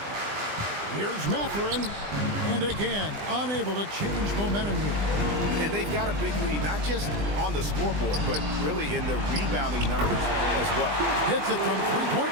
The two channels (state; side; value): late; left; 20 ms